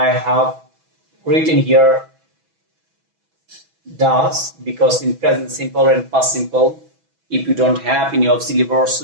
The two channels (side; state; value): left; late; 6.1 ms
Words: have written here does, because in present simple and past simple, if you don't have any auxiliary verb,